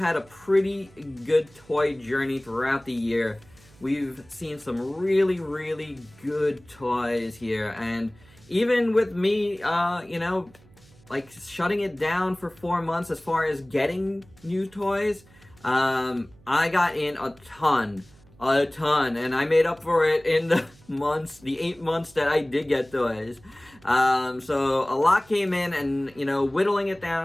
a pretty good toy journey throughout the year. We've seen some really good toys here, and even with me, like shutting it down for 4 months as far as getting new toys, I got in a ton, and I made up for it in the 8 months that I did get toys. So a lot came in, and, whittling it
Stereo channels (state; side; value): noise; right; hum, 27 dB below the sound